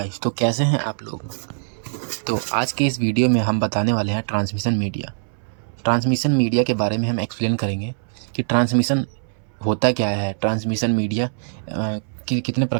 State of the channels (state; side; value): silent; left; 63 dB below the other